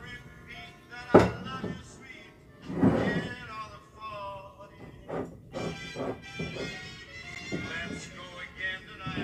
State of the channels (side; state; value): both; identical; correlation 1.00